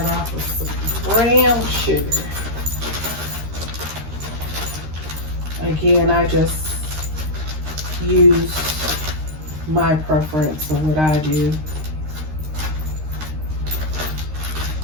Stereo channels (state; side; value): late; left; 13 ms